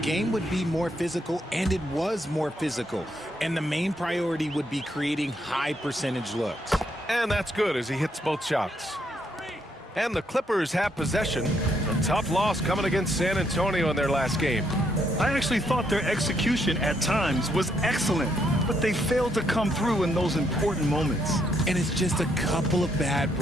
would be more physical, and it was more physical. And the main priority would be creating high percentage looks. And that's good as he hits both shots. And the Clippers have possession. A tough loss coming against San Antonio in their last game. I actually thought their execution at times was excellent, but they failed to come through in those important moments. And it's just a couple of bad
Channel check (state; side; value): normal; both; correlation 0.74